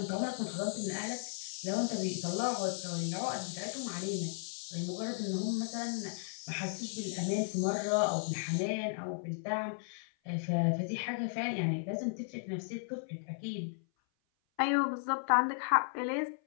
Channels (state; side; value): silent; right; 54 dB below the other